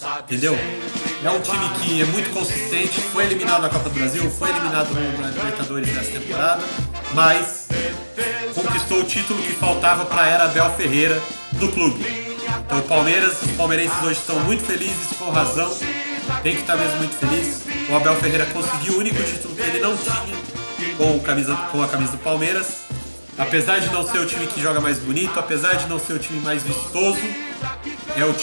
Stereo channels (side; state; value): both; inverted; correlation -1.00